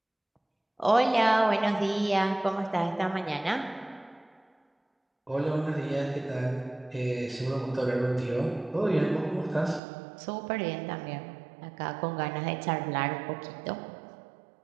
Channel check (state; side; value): drops out; left; at 9.8 s